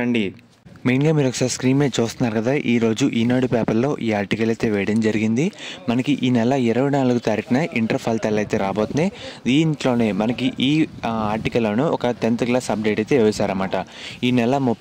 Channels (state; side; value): identical; both; correlation 1.00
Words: మెయిన్గా మీరు ఒకసారి స్క్రీన్ మీద చూస్తున్నారు కదా, ఈరోజు ఈనాడు పేపర్లో ఈ ఆర్టికల్ అయితే వేయడం జరిగింది. మనకి ఈ నెల 24 తారీఖున ఇంటర్ ఫలితాలు అయితే రాబోతున్నాయి. దీంట్లోనే మనకి ఈ ఆర్టికల్లోనే ఒక 10th క్లాస్ అప్డేట్ అయితే వేశారన్నమాట. ఈ నెల